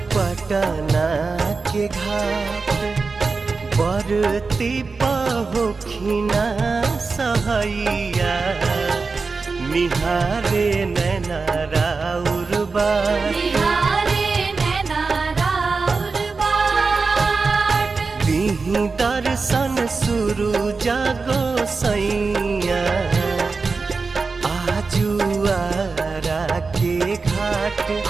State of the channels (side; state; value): left; quieter; 4.3 dB